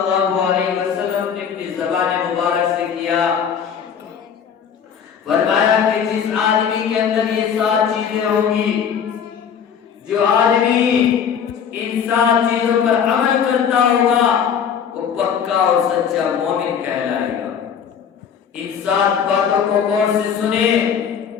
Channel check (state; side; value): quieter; right; 7.6 dB